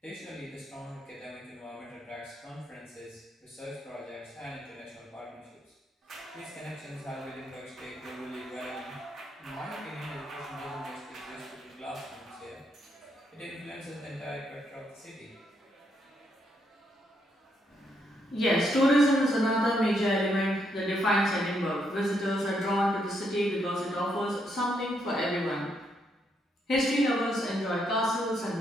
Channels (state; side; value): normal; both; correlation 0.76